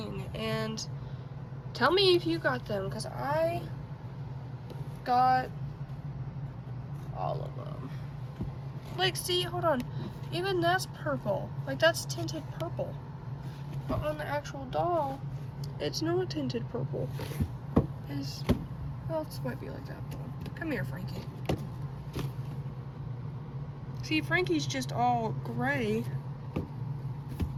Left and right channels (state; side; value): identical; both; correlation 1.00